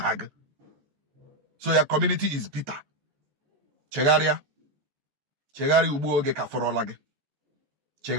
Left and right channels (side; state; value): left; late; 14 ms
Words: So your community is bitter. Chegaria ubuoge kaforolage.